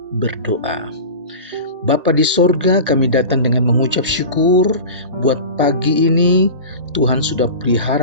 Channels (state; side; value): inverted; both; correlation -0.31